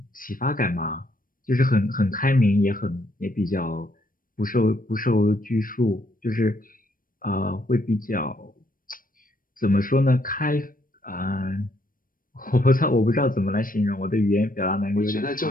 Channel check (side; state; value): right; late; 0.41 ms